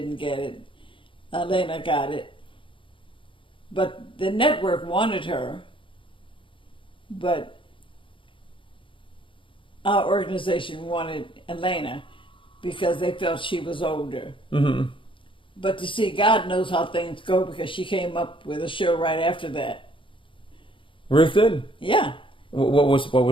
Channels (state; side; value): late; right; 0.25 ms